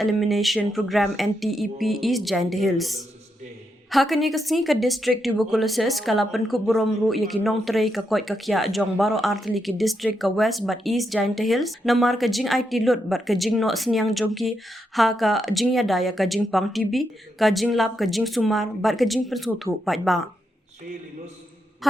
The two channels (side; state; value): both; normal; correlation 0.82